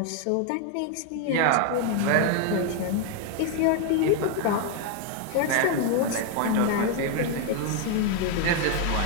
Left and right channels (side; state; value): both; different; correlation 0.01